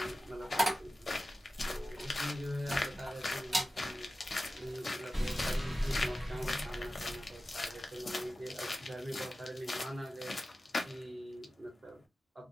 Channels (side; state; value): both; normal; correlation 0.94